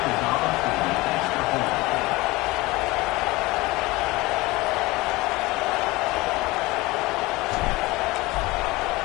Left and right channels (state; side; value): quieter; right; 21.3 dB